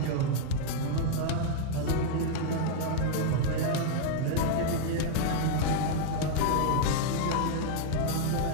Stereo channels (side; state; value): both; different; correlation 0.00